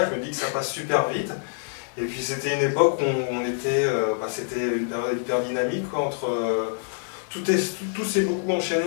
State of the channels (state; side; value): silent; right; digital silence